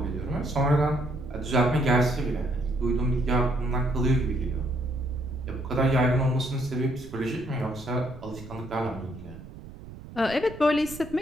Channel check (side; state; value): right; noise; rumble, 15 dB below the sound